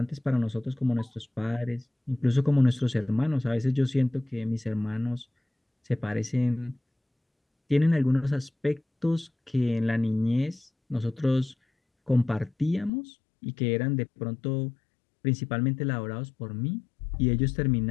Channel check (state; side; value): drops out; right; at 12.9 s